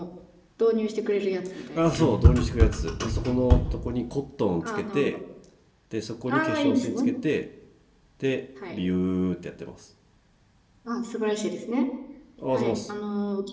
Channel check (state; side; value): identical; both; correlation 1.00